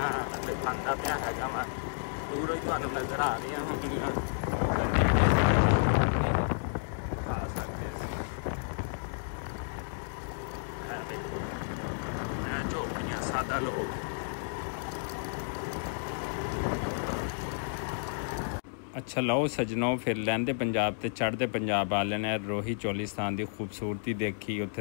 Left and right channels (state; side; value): silent; right; digital silence